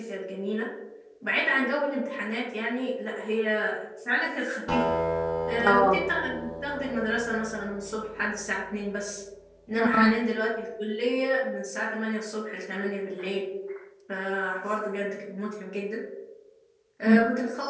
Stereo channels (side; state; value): both; identical; correlation 1.00